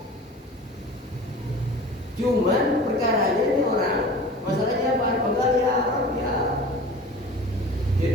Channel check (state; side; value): normal; both; correlation 0.39